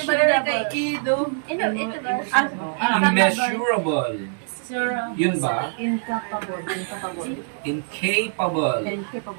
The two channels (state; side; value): silent; left; digital silence